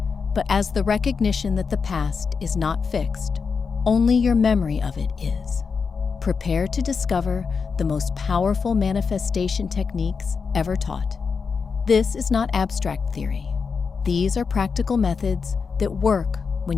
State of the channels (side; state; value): right; quieter; 5.4 dB